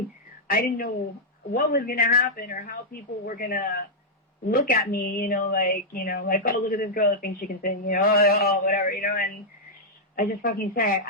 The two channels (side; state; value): both; normal; correlation -0.06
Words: didn't know what was going to happen or how people were going to look at me, you know, like, oh, look at this girl that thinks she can sing, you know, oh, whatever, you know, and I just fucking said,